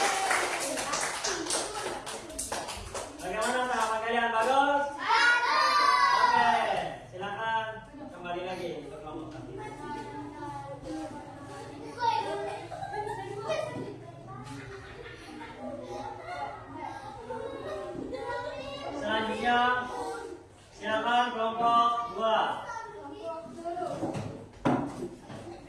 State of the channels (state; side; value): identical; both; correlation 1.00